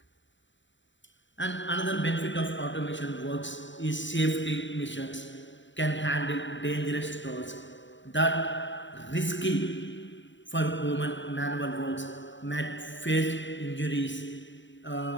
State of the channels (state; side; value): late; right; 0.54 ms